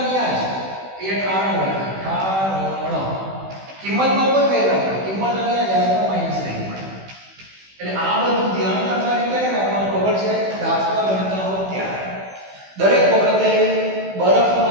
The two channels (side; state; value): left; late; 16 ms